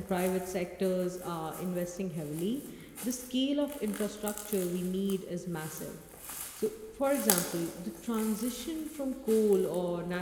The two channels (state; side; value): identical; both; correlation 1.00